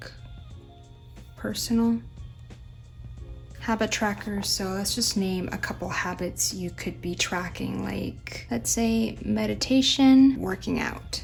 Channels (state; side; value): identical; both; correlation 1.00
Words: personal, habit tracker. So let's just name a couple habits you could be tracking, like let's say meditation, working out,